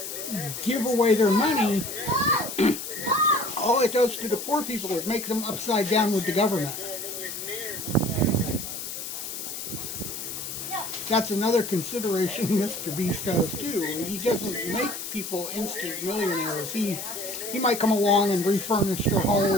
give away their money, all it does to the poor people is make them upside down with the government. That's another consideration Mr. Beast has too. He doesn't make people instant millionaires. He might come along and refurnish their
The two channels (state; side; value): noise; left; hiss, 7 dB below the sound